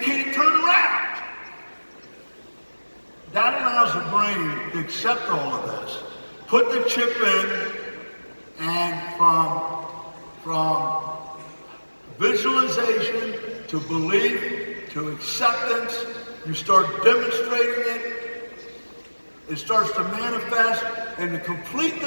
turn around. That allows the brain to accept all of this. Put the chip in, and from visualization to belief to acceptance, you start demonstrating it. It starts to manifest, and to complete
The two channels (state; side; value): inverted; both; correlation -1.00